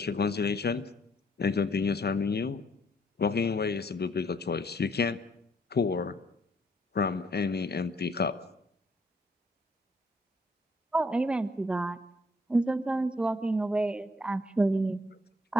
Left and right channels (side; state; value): both; normal; correlation 0.66